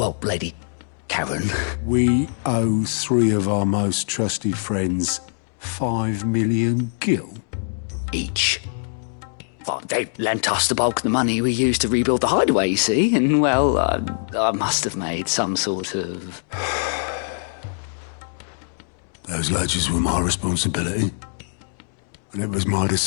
Lady Karen. We owe 3 of our most trusted friends 5 million gil. Each. Well, they lent us the bulk of the money we used to rebuild the hideaway, you see, and, well, I must have made some sort of... Those ledgers were my responsibility, and it was my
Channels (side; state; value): right; silent; digital silence